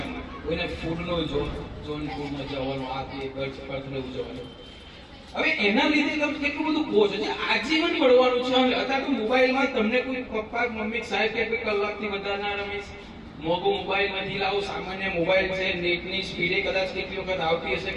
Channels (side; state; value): both; identical; correlation 1.00